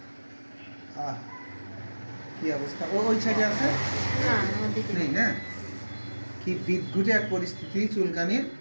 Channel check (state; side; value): inverted; both; correlation -1.00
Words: আহ কি অবস্থা! ও ওই সাইডে আছে নেই না? কি বিদঘুটে এক পরিস্থিতি চুলকানির।